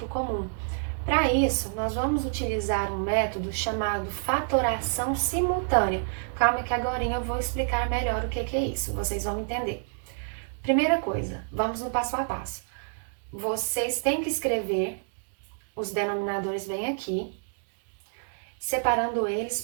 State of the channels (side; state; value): left; silent; digital silence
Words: comum. Para isso, nós vamos utilizar um método chamado fatoração simultânea. Calma que agora eu vou explicar melhor o que é isso, vocês vão entender. Primeira coisa, vamos no passo a passo. Vocês têm que escrever os denominadores bem aqui, separando eles